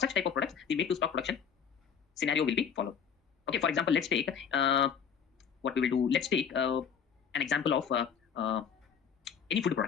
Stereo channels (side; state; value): right; quieter; 7.3 dB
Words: type of products, the make to stock production scenario will be followed. Okay, for example, let's take what we will do. Let's take an example of any food